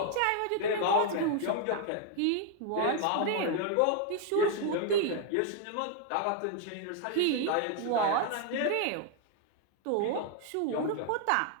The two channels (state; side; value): different; both; correlation 0.00